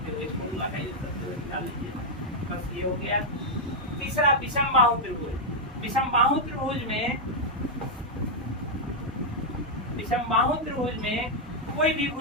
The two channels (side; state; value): both; normal; correlation -0.03